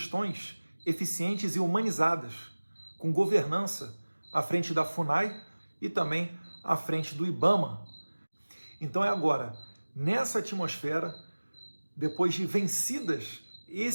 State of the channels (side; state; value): both; inverted; correlation -1.00